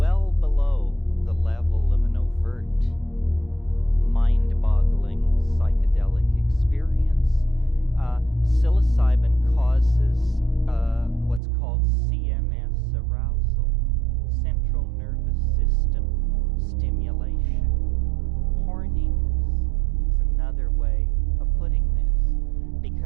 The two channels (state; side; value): drops out; left; at 11.4 s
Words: below the level of an overt, mind-boggling psychedelic experience, psilocybin causes what's called CNS arousal, central nervous system stimulation. Horniness is another way of putting this,